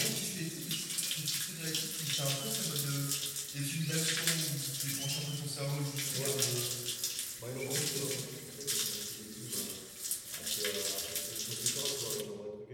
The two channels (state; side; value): identical; both; correlation 1.00